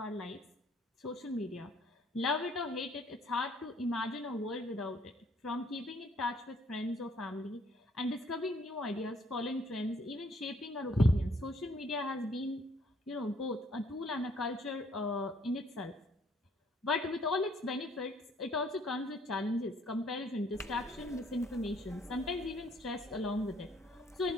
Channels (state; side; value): normal; both; correlation 0.63